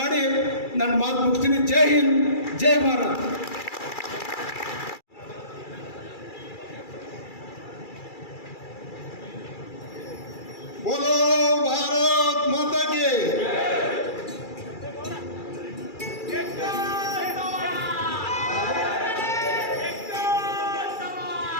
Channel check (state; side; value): late; right; 2.3 ms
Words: ನನ್ನ ಮಾತು ಮುಗಿಸ್ತೀನಿ. ಜೈ ಹಿಂದ್, ಜೈ ಭಾರತ್. बोलो भारत माता की